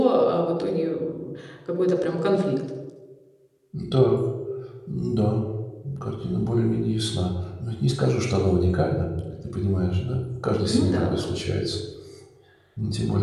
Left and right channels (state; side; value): identical; both; correlation 1.00